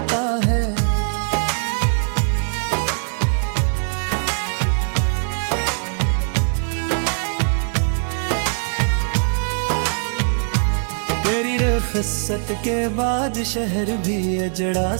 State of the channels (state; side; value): silent; left; digital silence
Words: है। तेरी रखसत के बाद शहर भी अजड़ा